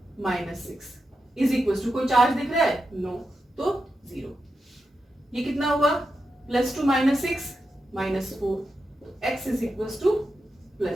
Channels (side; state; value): both; normal; correlation 0.88